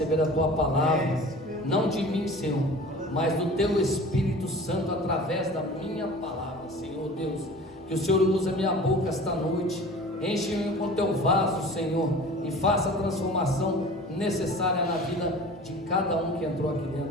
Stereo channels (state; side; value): normal; both; correlation 0.41